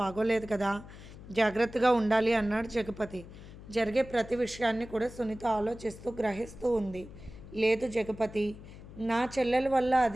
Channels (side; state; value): left; noise; hum, 16 dB below the sound